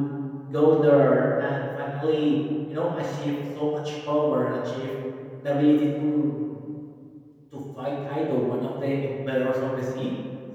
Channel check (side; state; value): both; identical; correlation 1.00